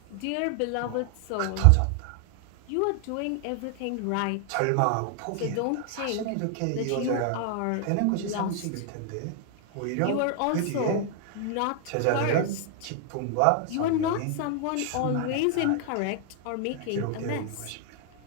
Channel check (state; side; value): different; both; correlation 0.00